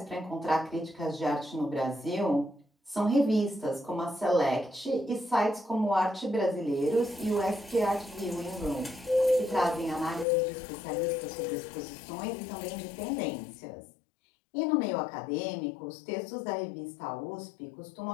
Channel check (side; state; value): right; drops out; at 10.2 s